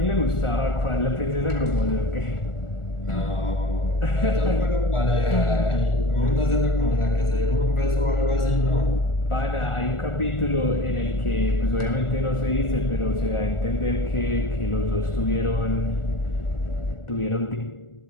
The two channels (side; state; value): right; late; 1.4 ms